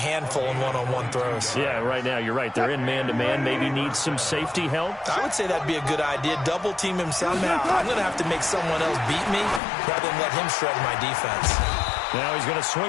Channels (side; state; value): right; drops out; at 9.6 s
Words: in one-on-one throws. Yeah, right now, you're right. They're in man-to-man. Maybe needs some safety help. I would say that'd be a good idea. Double team him somehow. I'm going to have to make someone else beat me rather than let him shred my defense. Now he's going to